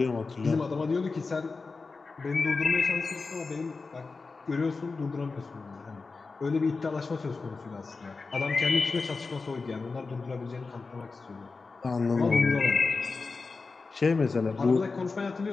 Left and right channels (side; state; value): right; quieter; 4.2 dB